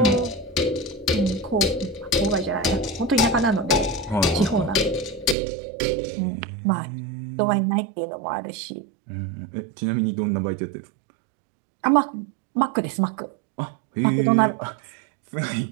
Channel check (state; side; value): drops out; left; at 5.4 s